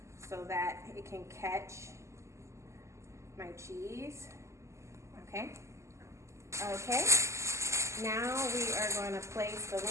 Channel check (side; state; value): left; late; 0.14 ms